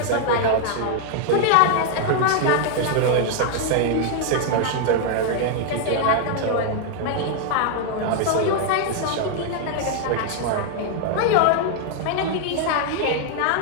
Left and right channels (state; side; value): different; both; correlation 0.00